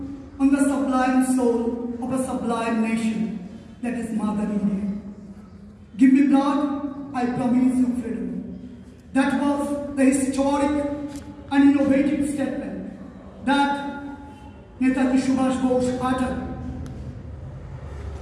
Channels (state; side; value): identical; both; correlation 1.00